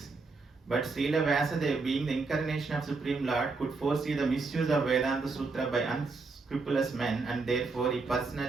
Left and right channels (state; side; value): quieter; left; 4.0 dB